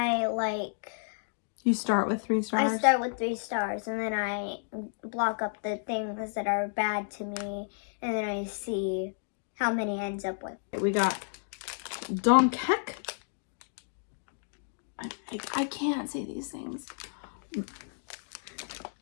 You start with 3 stars? I start with 3 stars, and then I block up the things that are bad to me, and then I see how many ends up with. We got Donkek. I can't say these things.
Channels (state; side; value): silent; right; digital silence